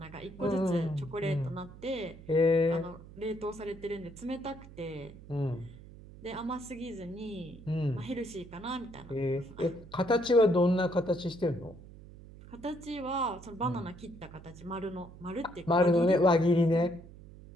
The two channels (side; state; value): right; noise; hum, 18 dB below the sound